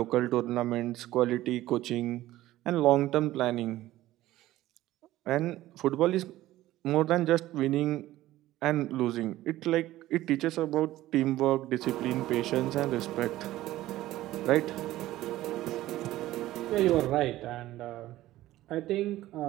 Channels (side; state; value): left; quieter; 15.5 dB